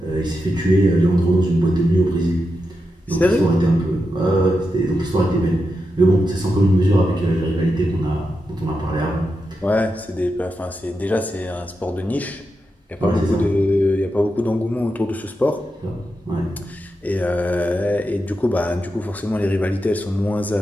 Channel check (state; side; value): normal; both; correlation 0.87